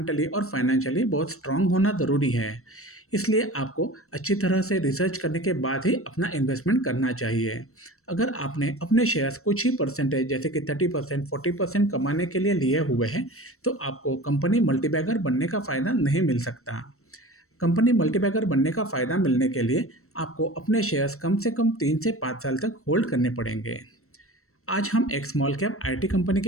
और फाइनेंशियली बहुत स्ट्रांग होना ज़रूरी है। इसलिए आपको अच्छी तरह से रिसर्च करने के बाद ही अपना इन्वेस्टमेंट करना चाहिए। अगर आपने अपने शेयर्स कुछ ही परसेंटेज जैसे कि 30% 40% कमाने के लिए लिए हुए हैं, तो आपको कंपनी मल्टीबैगर बनने का फ़ायदा नहीं मिल सकता। कंपनी मल्टीबैगर बनने का फ़ायदा मिलने के लिए आपको अपने शेयर्स कम से कम 3 से 5 साल तक होल्ड करने पड़ेंगे। आज हम एक स्मॉल कैप आईटी कंपनी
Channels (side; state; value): right; late; 0.63 ms